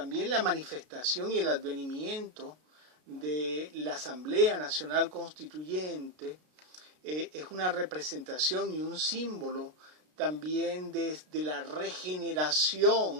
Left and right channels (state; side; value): late; left; 33 ms